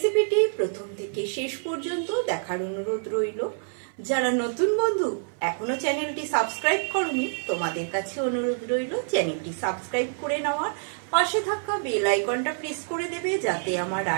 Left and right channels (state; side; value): silent; left; 59 dB below the other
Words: প্রথম থেকে শেষ পর্যন্ত দেখার অনুরোধ রইল। যারা নতুন বন্ধু এখনো চ্যানেলটি সাবস্ক্রাইব করনি, তোমাদের কাছে অনুরোধ রইল চ্যানেলটি সাবস্ক্রাইব করে নেওয়ার, পাশে থাকা বেল আইকনটা প্রেস করে দেবে যাতে আমার